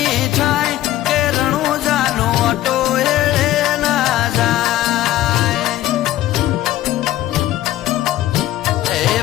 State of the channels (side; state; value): right; quieter; 14.3 dB